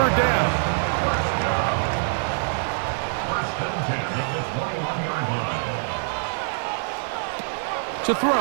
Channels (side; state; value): left; silent; 62 dB below the other